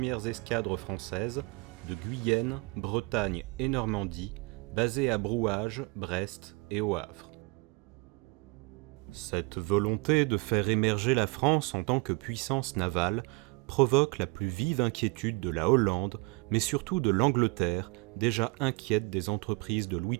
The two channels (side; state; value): left; quieter; 28.3 dB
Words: escadres françaises de Guyenne, Bretagne et Normandie, basées à Brouage, Brest et au Havre. Cette volonté de faire émerger la France en tant que puissance navale provoque la plus vive inquiétude de la Hollande, mais surtout de l'Angleterre, déjà inquiète des entreprises de Louis